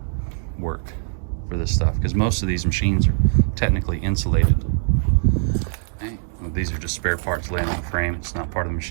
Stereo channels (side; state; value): left; silent; digital silence